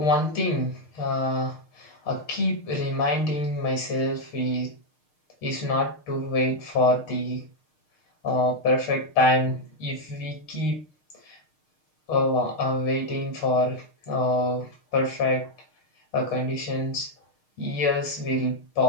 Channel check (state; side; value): late; right; 6.5 ms